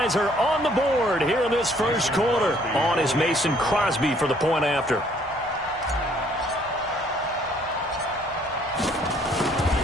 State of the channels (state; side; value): normal; both; correlation 0.63